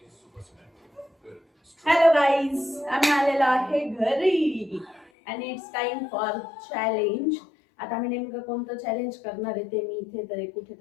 हॅलो गाईज, आम्ही आलेलो आहे घरी आणि इट्स टाइम फॉर चॅलेंज. आता आम्ही नेमकं कोणतं चॅलेंज करणार आहे ते मी इथे तरी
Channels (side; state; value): right; drops out; at 5.1 s